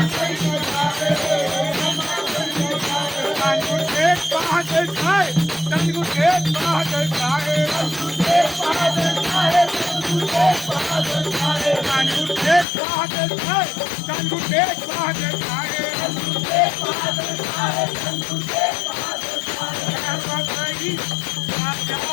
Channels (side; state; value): right; drops out; at 12.7 s